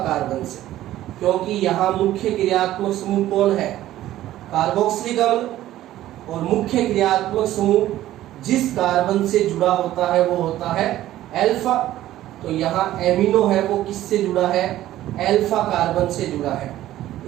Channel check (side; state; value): left; quieter; 14.0 dB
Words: कार्बन से, क्योंकि यहाँ मुख्य क्रियात्मक समूह कौन है? कार्बोक्सिलिक अम्ल। और मुख्य क्रियात्मक समूह जिस कार्बन से जुड़ा होता है वो होता है अल्फा। तो यहाँ एमिनो है वो किससे जुड़ा है? अल्फा कार्बन से जुड़ा है,